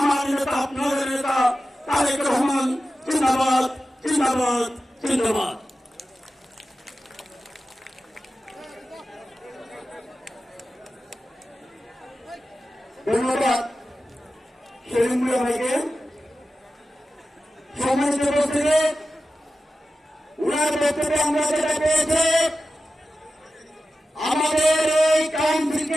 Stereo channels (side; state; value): both; normal; correlation 0.93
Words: নেতা আপনাদের নেতা তারেক রহমান জিন্দাবাদ, জিন্দাবাদ, জিন্দাবাদ। ধন্যবাদ সেলিম মিয়া ভাইকে। সম্মানিত উপস্থিতি, উনার বক্তব্যে আমরা যেটা পেয়েছি, আমাদের এই